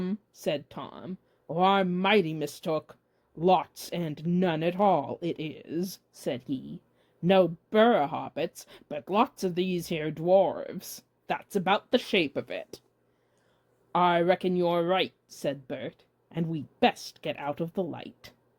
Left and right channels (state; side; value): identical; both; correlation 1.00